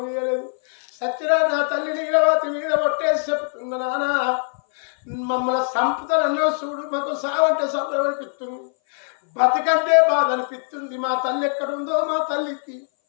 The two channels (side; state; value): right; silent; 60 dB below the other